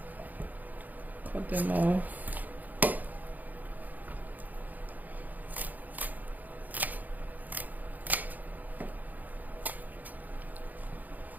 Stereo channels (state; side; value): late; left; 0.082 ms